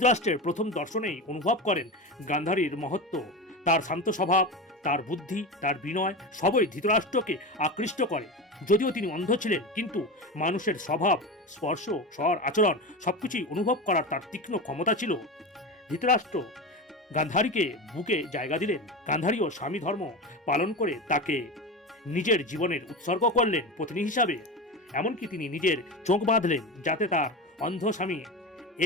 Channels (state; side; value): normal; both; correlation 0.23